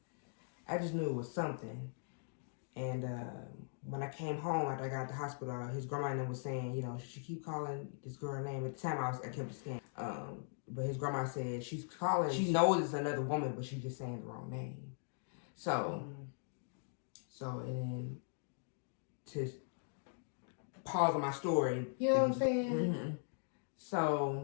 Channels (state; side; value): silent; right; digital silence